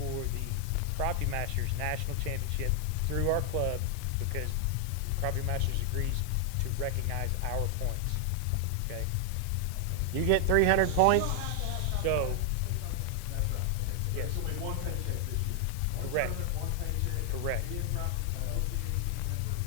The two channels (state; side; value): different; both; correlation 0.00